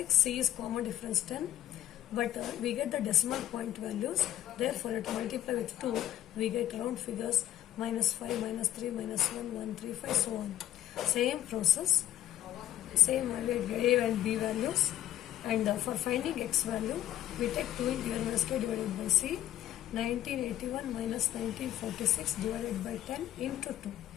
c is common difference 10. But we get the decimal point values. Therefore, to multiply with 2, we get round figures minus 5, minus 3, minus 1, 1, 3, 5, so on. Same process, same value a and b values. And for finding x value, we take 2 into n minus k divided by c. 1981 minus 1946 divided by 10 into 2.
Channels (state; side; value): quieter; right; 12.4 dB